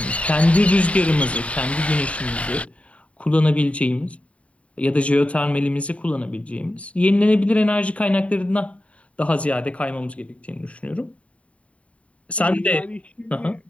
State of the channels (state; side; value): late; right; 0.064 ms